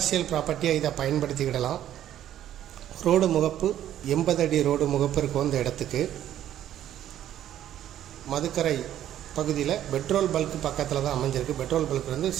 ப்ராப்பர்ட்டியாக இதை பயன்படுத்திக்கிடலாம். ரோடு முகப்பு 80 அடி ரோடு முகப்பு இருக்கும் இந்த இடத்துக்கு. மதுக்கரை பகுதியில் பெட்ரோல் பல்க் பக்கத்தில் தான் அமைஞ்சிருக்கு. பெட்ரோல் பல்க்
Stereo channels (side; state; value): left; quieter; 11.5 dB